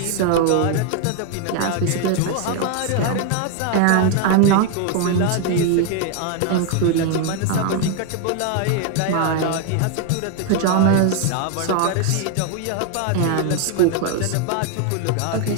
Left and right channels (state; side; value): different; both; correlation 0.01